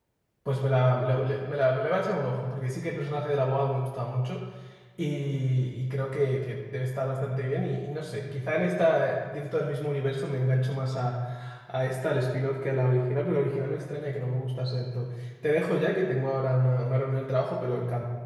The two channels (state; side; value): identical; both; correlation 1.00